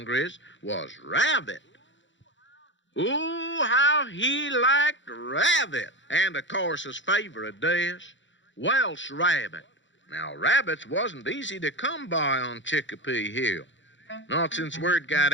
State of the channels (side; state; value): right; late; 0.54 ms